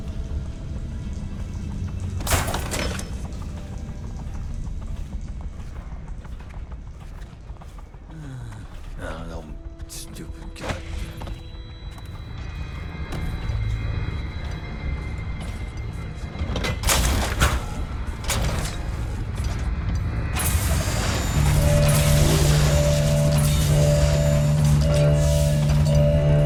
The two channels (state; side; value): identical; both; correlation 1.00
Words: Oh, no, stupid guy.